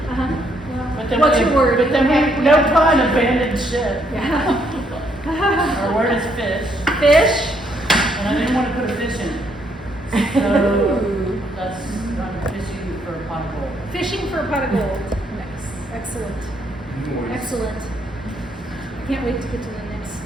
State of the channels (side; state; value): both; normal; correlation 0.72